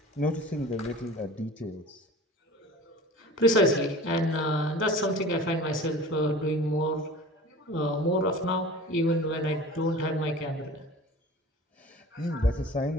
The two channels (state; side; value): normal; both; correlation 0.40